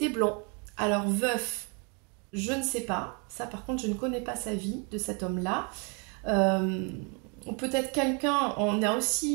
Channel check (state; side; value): quieter; left; 34.7 dB